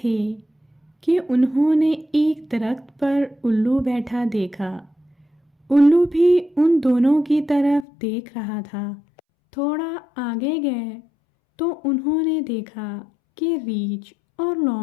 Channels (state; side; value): drops out; right; at 7.9 s